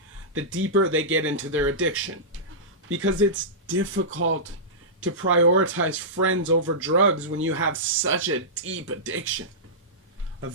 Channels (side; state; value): both; normal; correlation -0.16